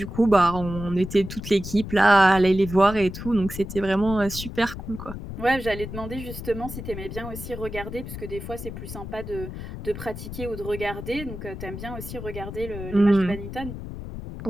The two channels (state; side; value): noise; left; rumble, 9 dB below the sound